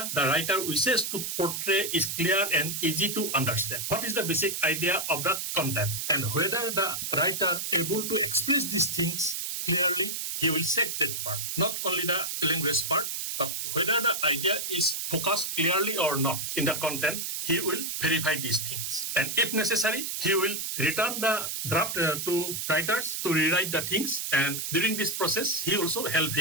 the writer wishes to portray is clear and easy to understand. What is the basic idea of the content, and whether the writer able to express these things clearly, he will check that part. Not only the language part, but whether the idea is focused clearly or not in the content, he will verify these things. And if necessary, he will return the draft to writers to rewrite the things. And during this process, he also help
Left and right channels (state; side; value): noise; right; hiss, 3 dB below the sound